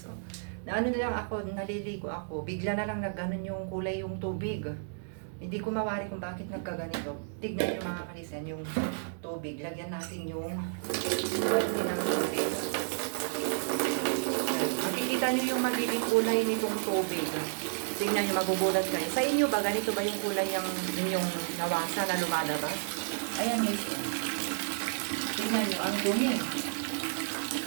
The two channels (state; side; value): silent; left; digital silence